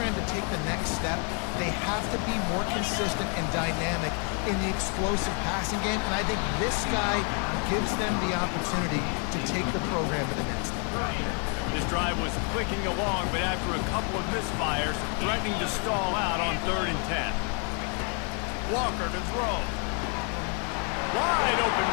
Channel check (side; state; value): right; quieter; 39.1 dB